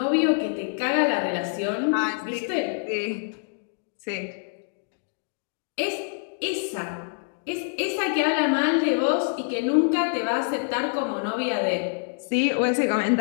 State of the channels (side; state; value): right; silent; digital silence